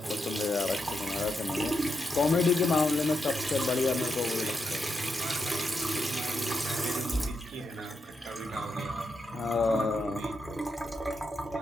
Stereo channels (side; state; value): both; normal; correlation 0.84